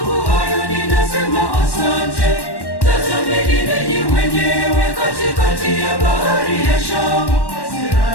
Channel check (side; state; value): right; late; 1.1 ms